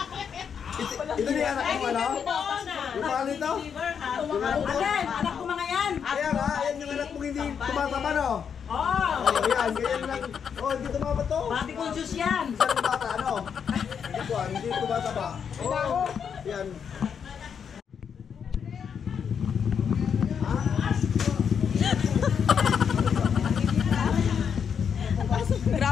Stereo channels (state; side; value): quieter; right; 7.2 dB